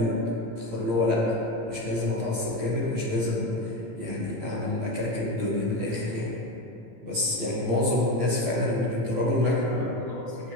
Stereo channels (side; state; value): left; late; 18 ms